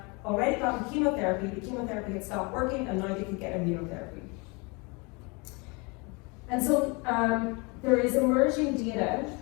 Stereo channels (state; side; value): quieter; right; 29.2 dB